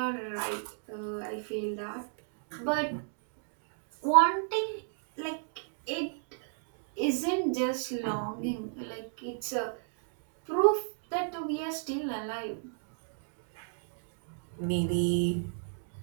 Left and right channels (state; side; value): silent; left; digital silence